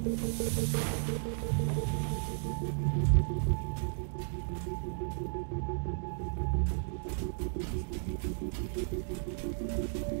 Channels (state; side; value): silent; left; digital silence